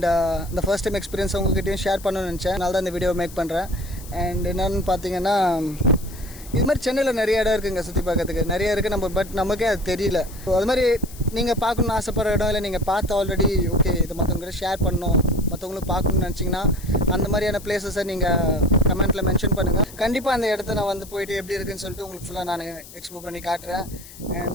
இந்த ஃபர்ஸ்ட் டைம் எக்ஸ்பீரியன்ஸ் உங்ககிட்டையும் ஷேர் பண்ணணும்னு நினச்சேன். அதனால தான் இந்த வீடியோ மேக் பண்ணுறேன். அண்ட் என்னென்னு பார்த்தீங்கன்னா, இது மாதிரி சென்னையில் நிறைய இடம் இருக்குதுங்க சுற்றி பார்க்கறதுக்கு. நிறைய இருக்குது பட் நமக்கே அது தெரியல. அது மாதிரி நீங்கள் பார்க்கணுன்னு ஆசைப்படுற இடம் இல்லை நீங்கள் பார்த்து ஆல்ரெடி ஓகே இதை மற்றவங்ககிட்ட ஷேர் பண்ணணும், மற்றவங்களும் பார்க்கணுன்னு நினச்சிங்கன்னா அந்த மாதிரியான பிளேஸஸை நீங்கள் கமெண்ட்டில் மென்ஷன் பண்ணுங்கள். கண்டிப்பாக அந்த இடத்த நான் வந்து போயிட்டு எப்படி இருக்குன்னு சொல்லிட்டு உங்களுக்கு ஃபுல்லாக நான் எக்ஸ்ப்ளோர் பண்ணி காட்டுறேன்.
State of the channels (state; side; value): noise; left; hiss, 18 dB below the sound